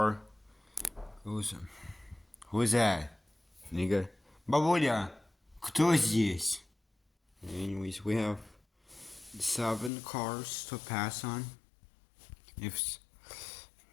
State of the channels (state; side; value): drops out; right; at 9.9 s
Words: goes. Who is that? Nigga. Бабуля, кто здесь? Anyways, we have 7 cars to pass on.